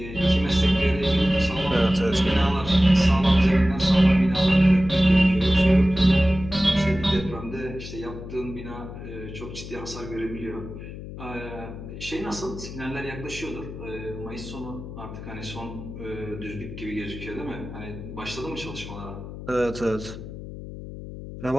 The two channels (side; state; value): left; noise; hum, 11 dB below the sound